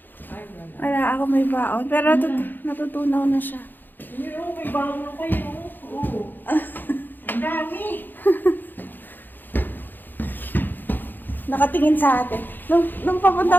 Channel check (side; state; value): right; late; 0.090 ms